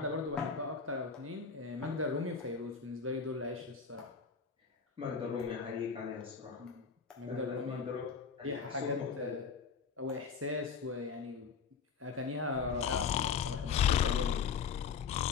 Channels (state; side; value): quieter; right; 5.9 dB